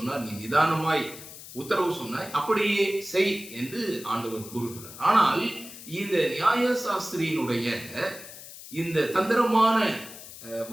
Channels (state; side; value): noise; left; hiss, 15 dB below the sound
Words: நீ நிதானமாய் உத்தரவு சொன்னாய், அப்படியே செய் என்று ஆண்டவர் கூறுகிறார். ஆனால் இந்த நியாய சாஸ்திரியினுடைய இந்த தந்திரமான